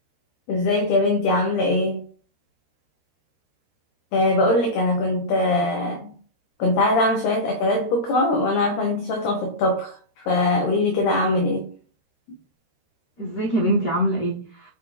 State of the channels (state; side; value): late; right; 13 ms